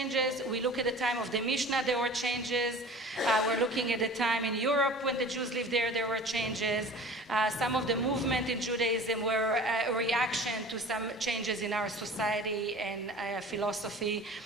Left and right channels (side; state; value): both; normal; correlation 0.41